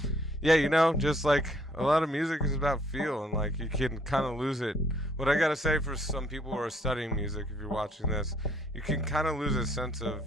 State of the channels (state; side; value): normal; both; correlation 0.64